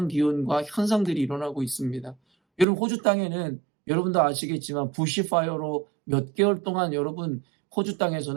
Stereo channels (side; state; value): left; drops out; at 2.7 s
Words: 기온과 현상들이 일어나고 있습니다. 여러분 호주 땅에는 여러분도 아시겠지만 부시파이어로 몇 개월 동안 여러분 호주